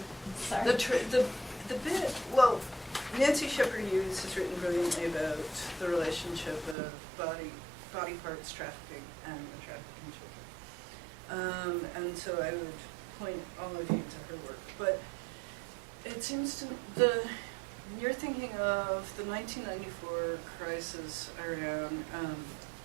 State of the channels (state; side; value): drops out; left; at 6.8 s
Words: Sorry. The bit, well, Nancy Shepherd Hughes has written brilliantly about the relationship of body parts trafficking and the trafficking children. And so I would point all of you to her work. But it seems to you're thinking of the 1994 crisis around